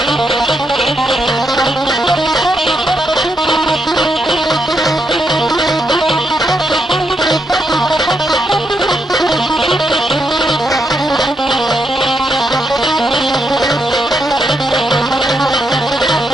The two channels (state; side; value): normal; both; correlation 0.80